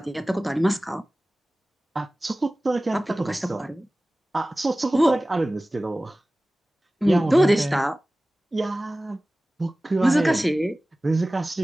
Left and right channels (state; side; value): normal; both; correlation 0.97